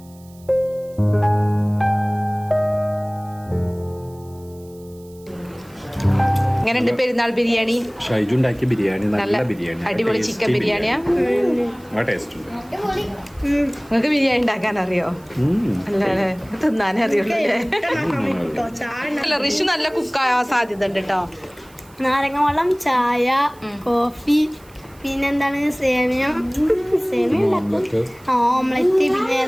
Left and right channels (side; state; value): right; noise; hiss, 27 dB below the sound